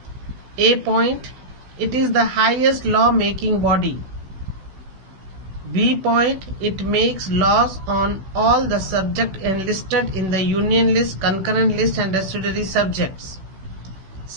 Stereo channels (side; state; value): left; late; 16 ms